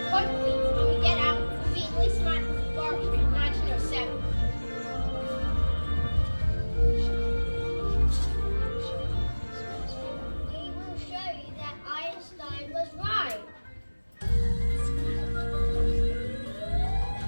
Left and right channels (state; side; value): inverted; both; correlation -1.00